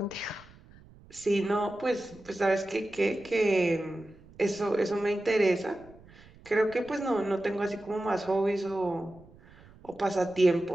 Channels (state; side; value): noise; right; rumble, 24 dB below the sound